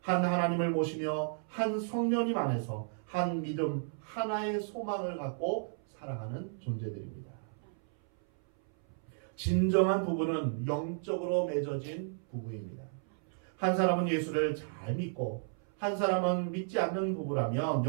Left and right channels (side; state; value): left; silent; 56 dB below the other